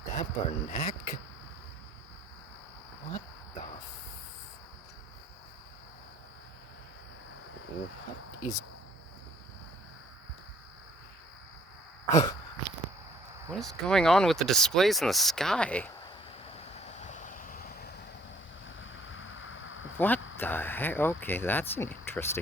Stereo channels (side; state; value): both; normal; correlation 0.60